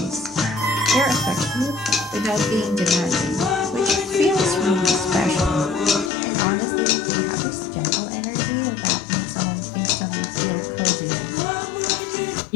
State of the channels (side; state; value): right; drops out; at 6.1 s